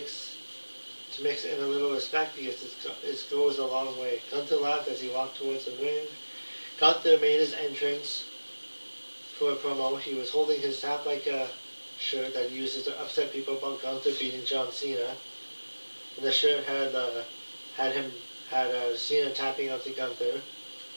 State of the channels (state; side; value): inverted; both; correlation -1.00